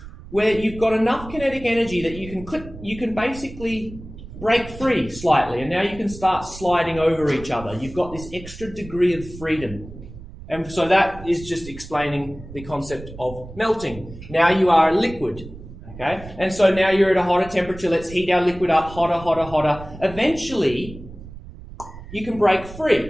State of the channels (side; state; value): right; noise; rumble, 15 dB below the sound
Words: where you've got enough kinetic energy that you can basically break free slightly, and now you can start sliding over each other. You've got this extra degree of freedom. And so that is just explaining the concept of melting. Now you are a liquid. Okay? And so now you're at a hotter temperature. Let's heat our liquid up hotter, hotter, hotter. Eventually, you can break